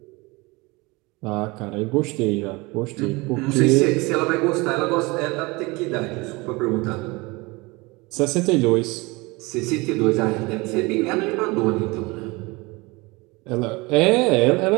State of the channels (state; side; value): quieter; left; 24.4 dB